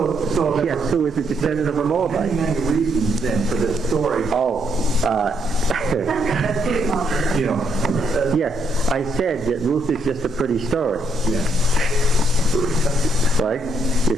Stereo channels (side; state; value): both; normal; correlation 0.74